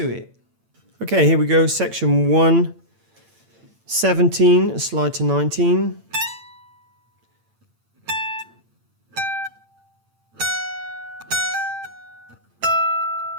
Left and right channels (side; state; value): left; late; 8.8 ms